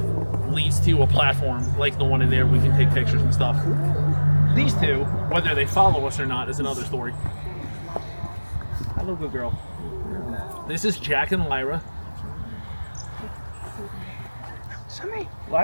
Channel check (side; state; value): both; inverted; correlation -1.00